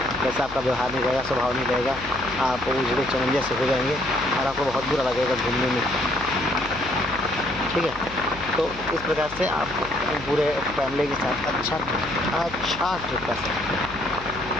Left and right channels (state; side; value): noise; left; hum, 16 dB below the sound